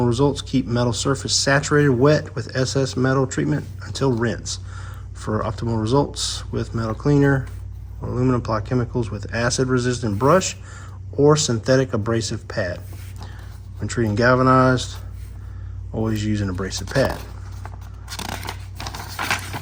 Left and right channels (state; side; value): identical; both; correlation 1.00